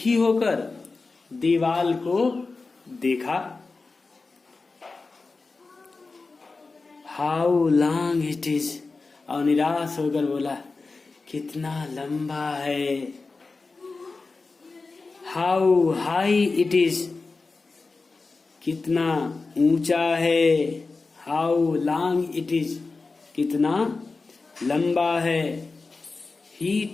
होकर दीवाल को देखा। हाउ लॉन्ग इट इज, और निराश होकर बोला कितना लंबा है। हाउ हाई इट इज, कितना ऊंचा है। हाउ लॉन्ग इट इज, कितना लंबा है। ही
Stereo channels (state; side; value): quieter; right; 3.9 dB